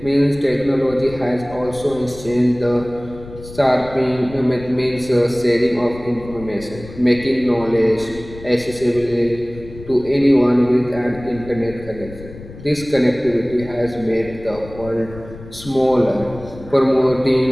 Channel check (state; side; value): noise; left; rumble, 16 dB below the sound